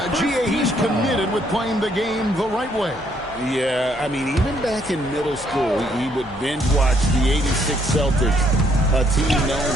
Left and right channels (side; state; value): both; normal; correlation 0.69